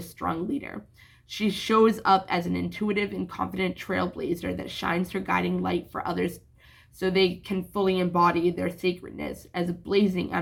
leader. She shows up as an intuitive and confident trailblazer that shines her guiding light for others so they can fully embody their sacredness as a blazing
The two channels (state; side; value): identical; both; correlation 1.00